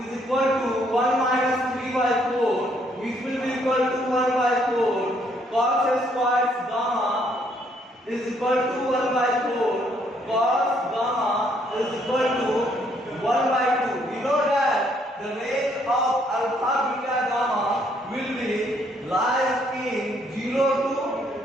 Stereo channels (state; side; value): normal; both; correlation 0.68